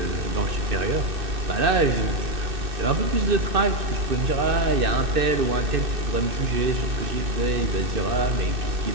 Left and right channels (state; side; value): late; left; 2.6 ms